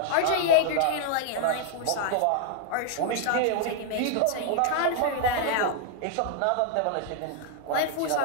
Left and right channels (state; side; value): different; both; correlation 0.00